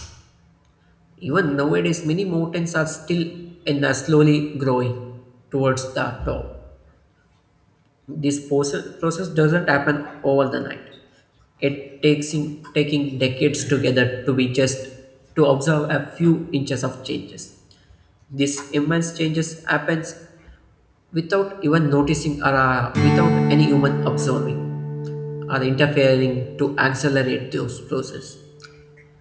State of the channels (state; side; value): identical; both; correlation 1.00